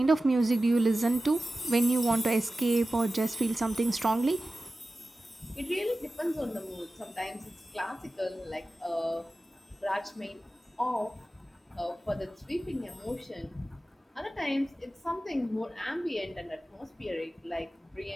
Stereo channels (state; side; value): normal; both; correlation 0.95